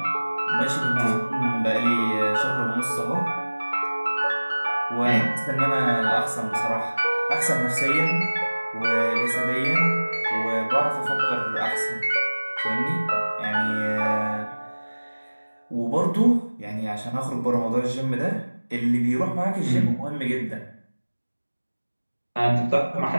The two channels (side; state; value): both; inverted; correlation -1.00